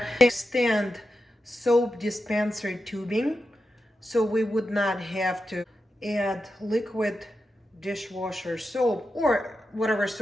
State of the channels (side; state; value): both; normal; correlation 0.89